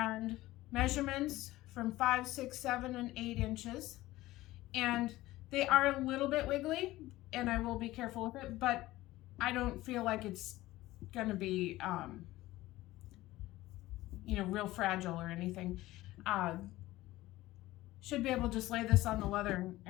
measurements from 5, 6, 7, and 8 inches. And they are a little bit wiggly, and I will be careful with it, but I don't feel like it's gonna be real fragile or anything. Should be able to just lay this on the leather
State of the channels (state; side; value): quieter; right; 17.3 dB